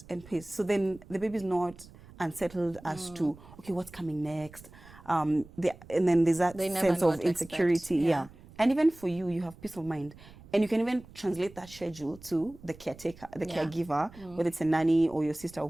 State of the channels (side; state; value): right; noise; rumble, 21 dB below the sound